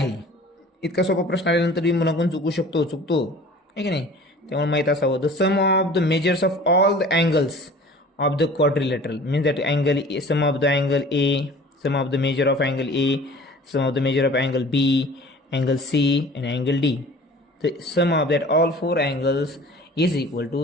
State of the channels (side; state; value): both; normal; correlation 0.45